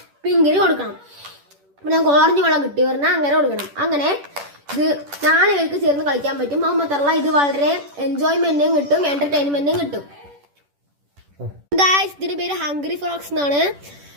പിങ്കിന് കൊടുക്കണം. അപ്പൊ നമുക്ക് ഓറഞ്ച് ബോളാണ് കിട്ടി പറഞ്ഞാൽ അങ്ങനെ കൊടുക്കണം. അങ്ങനെ ഇത് 4 പേർക്ക് ചേർന്ന് കളിക്കാൻ പറ്റും. അത് മാത്രമല്ല ഇത് വളരെ എൻജോയ്മെന്റും കിട്ടും, എന്റർടൈൻമെന്റും കിട്ടും. ഗായ്സ് ഇതിന്റെ പേര് ഹംഗ്രി ഫ്രോക്സ് എന്നാണ്.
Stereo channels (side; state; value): left; late; 10 ms